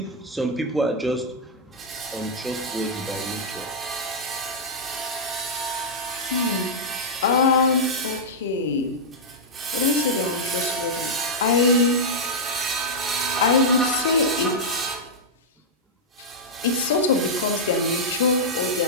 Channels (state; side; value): normal; both; correlation -0.07